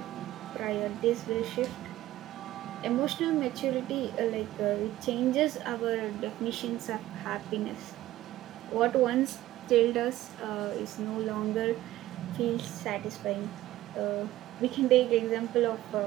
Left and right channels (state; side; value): quieter; left; 15.2 dB